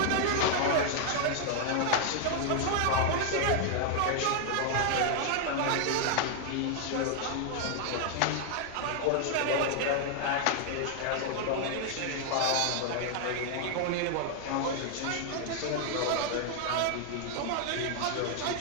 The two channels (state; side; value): different; both; correlation 0.00